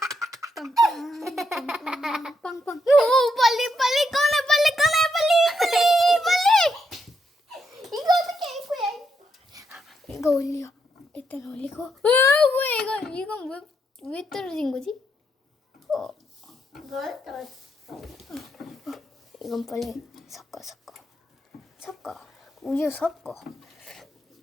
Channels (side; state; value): both; normal; correlation 0.79